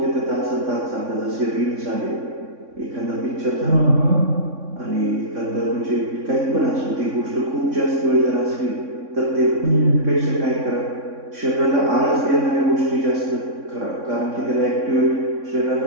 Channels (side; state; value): left; late; 3.6 ms